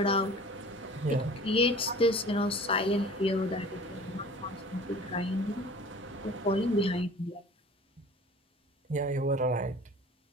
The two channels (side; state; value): both; normal; correlation 0.44